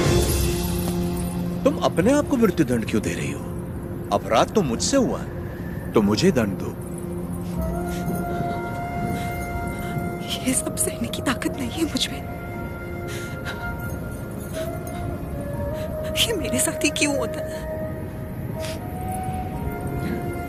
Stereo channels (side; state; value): both; identical; correlation 1.00